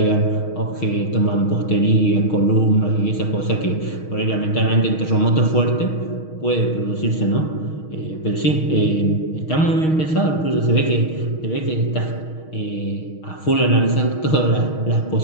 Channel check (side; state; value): right; late; 6.4 ms